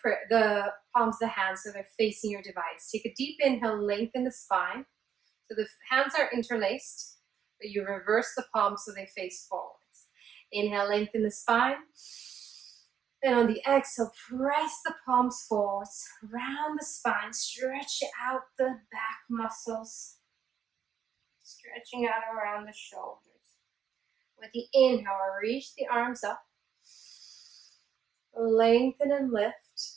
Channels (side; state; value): left; quieter; 8.3 dB